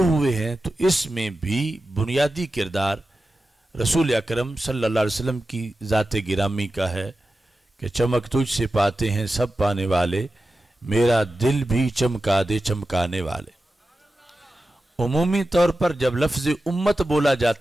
ہوئے ہیں، تو اس میں بھی بنیادی کردار رسول اکرم صلی اللہ علیہ وسلم کی ذات گرامی کا ہے کہ چمک تجھ سے پاتے ہیں سب پانے والے، میرا دل بھی چمکا دے چمکانے والے۔ عمومی طور پر جب لفظ امت بولا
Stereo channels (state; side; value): normal; both; correlation 0.93